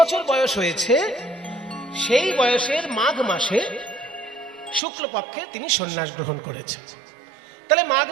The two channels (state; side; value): drops out; left; at 4.8 s